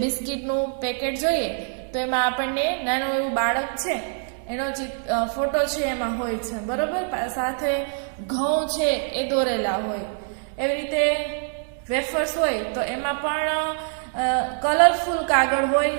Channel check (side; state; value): left; silent; 62 dB below the other